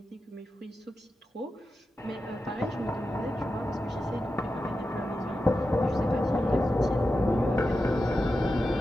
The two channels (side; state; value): both; normal; correlation 0.91